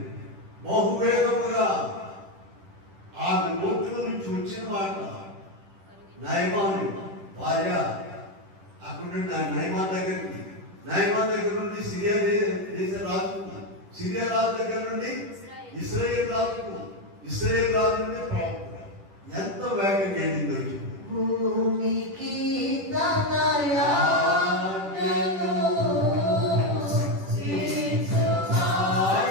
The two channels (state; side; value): late; left; 10 ms